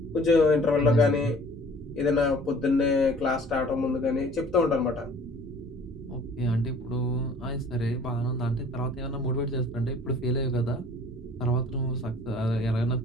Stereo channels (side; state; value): both; normal; correlation 0.51